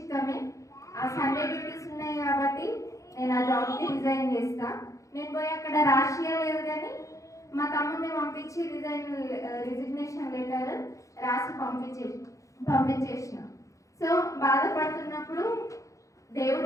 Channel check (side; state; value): right; late; 0.15 ms